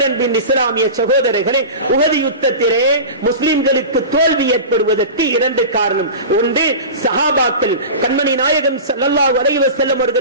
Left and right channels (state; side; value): inverted; both; correlation -0.31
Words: இஸ்லாமிய சகோதரர்களே, உஹது யுத்தத்திலே முஸ்லிம்களுக்கு தோல்வி ஏற்படுவதற்கு 2 காரணம். ஒன்று, சஹாபாக்கள் கண்மணி நாயகம் ஸல்லல்லாஹு அலைஹி வஸல்லம்